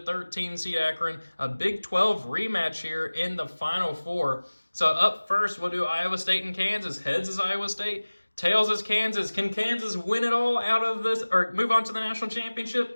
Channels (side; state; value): both; inverted; correlation -1.00